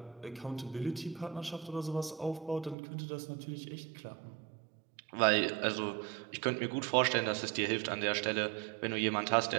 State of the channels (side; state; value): left; drops out; at 2.8 s